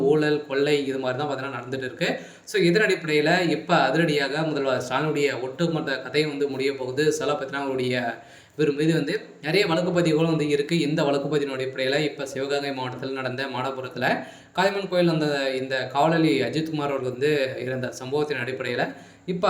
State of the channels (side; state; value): both; identical; correlation 1.00